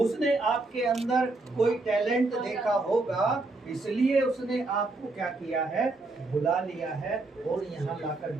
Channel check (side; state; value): left; quieter; 3.2 dB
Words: आपके अंदर कोई टैलेंट देखा होगा, इसलिए उसने आपको क्या किया है, बुला लिया है और यहाँ लाकर